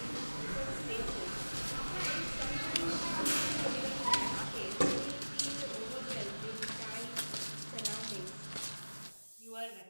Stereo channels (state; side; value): inverted; both; correlation -1.00